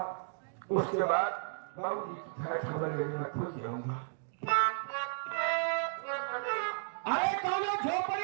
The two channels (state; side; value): silent; left; digital silence